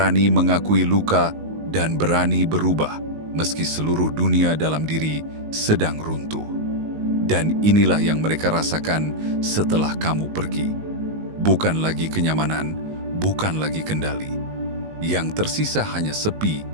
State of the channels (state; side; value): late; left; 19 ms